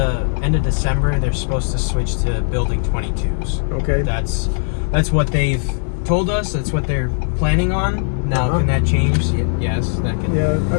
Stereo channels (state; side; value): silent; right; digital silence